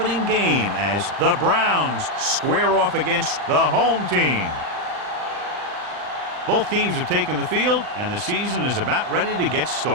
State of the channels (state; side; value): late; left; 39 ms